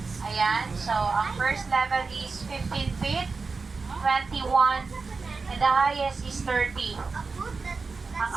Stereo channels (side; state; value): left; quieter; 4.4 dB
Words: Ayan, so ang first level is 15 feet, 21, and the highest is 30. Ang